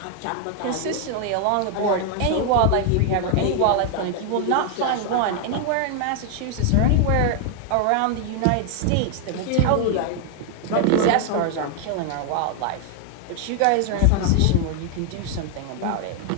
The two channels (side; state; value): both; different; correlation 0.00